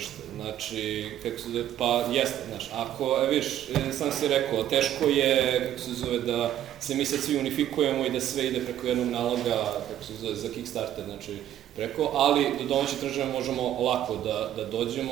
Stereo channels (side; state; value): left; quieter; 11.6 dB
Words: Znači, kako se zove, pa jeste, znaš, ako, vidiš, sam si rekao, teško je, kako se zove, da se mi sad svi unifikujemo i da sve ide preko jednog naloga, kako se zove, za Kickstarter, znači, preko, ali do domaće tržište možemo lako da